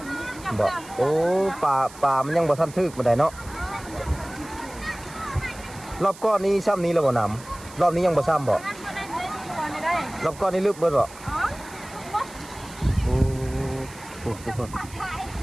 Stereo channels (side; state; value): right; noise; hiss, 19 dB below the sound